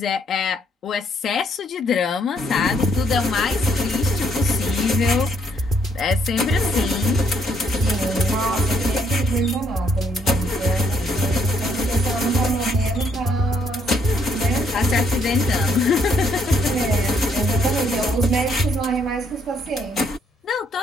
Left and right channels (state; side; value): normal; both; correlation 0.70